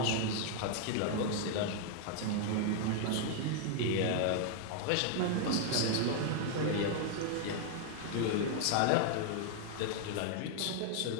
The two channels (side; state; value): both; different; correlation 0.00